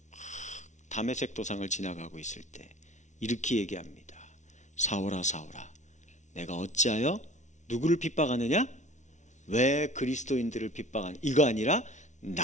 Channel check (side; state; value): right; late; 0.35 ms